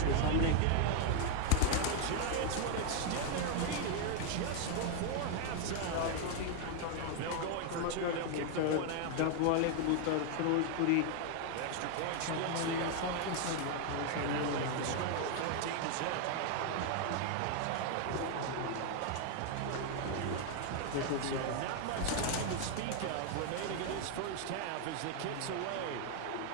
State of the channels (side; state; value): both; different; correlation 0.00